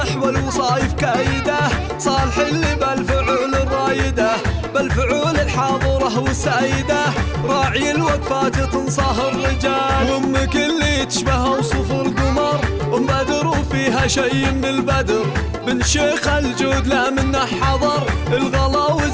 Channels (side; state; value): both; identical; correlation 1.00